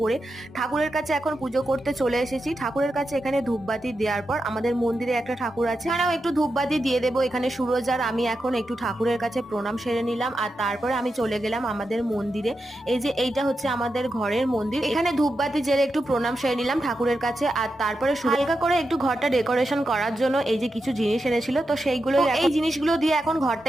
পরে ঠাকুরের কাছে এখন পুজো করতে চলে এসেছি। ঠাকুরের কাছে এখানে ধূপবাতি দেওয়ার পর আমাদের মন্দিরে একটা ঠাকুর আছে, এখানেও একটু ধূপবাতি দিয়ে দেবো। এখানে সুরজ আর আমি এখন একটু ঠাকুরের কাছে প্রণাম সেরে নিলাম, আর তারপরে আমি চলে গেলাম আমাদের মন্দিরে। এই যে এইটা হচ্ছে আমাদের ঘরের মন্দির, এখানে ধূপবাতি জেলে একটু প্রণাম সেরে নিলাম ঠাকুরের কাছে। আর তারপরে হালকা করে একটু ঘরটা ডেকোরেশন করার জন্য এই যে কিছু জিনিস এনেছিল, তো সেইগুলো এই জিনিসগুলো দিয়ে এখন ঘরটা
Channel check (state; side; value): normal; both; correlation 0.88